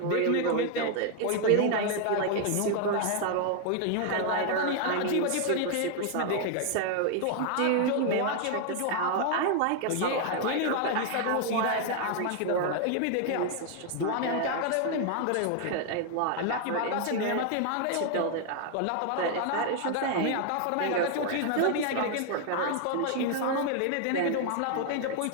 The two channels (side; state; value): both; different; correlation 0.00